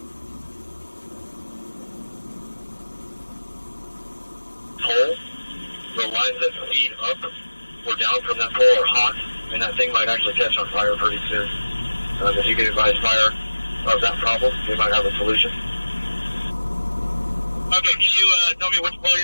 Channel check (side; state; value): both; inverted; correlation -1.00